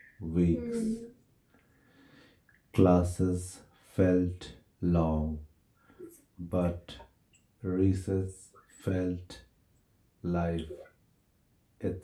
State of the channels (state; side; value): identical; both; correlation 1.00